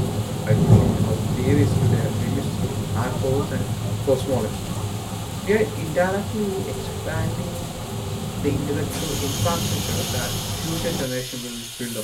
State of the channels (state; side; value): identical; both; correlation 1.00